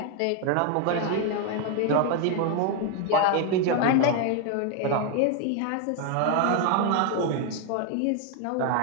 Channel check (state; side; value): different; both; correlation 0.01